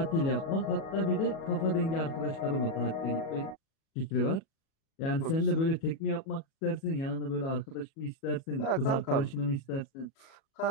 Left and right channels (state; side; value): late; right; 36 ms